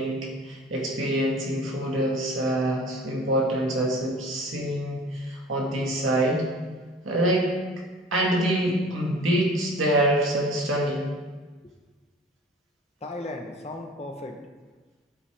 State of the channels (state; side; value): normal; both; correlation 0.44